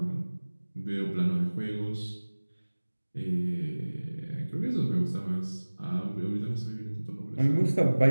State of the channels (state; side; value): inverted; both; correlation -1.00